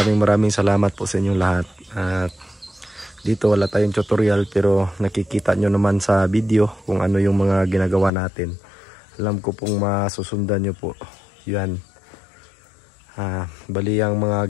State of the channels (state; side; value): drops out; right; at 8.1 s